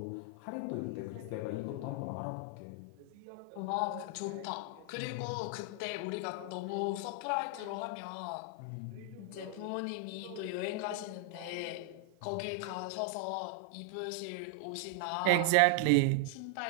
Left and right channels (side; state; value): both; different; correlation 0.00